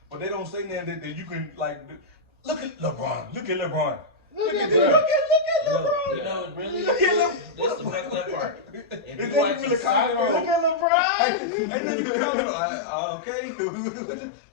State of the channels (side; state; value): right; drops out; at 10.9 s